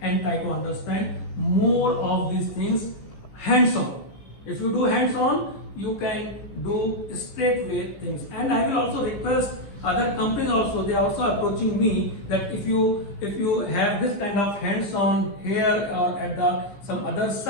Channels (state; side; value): late; right; 15 ms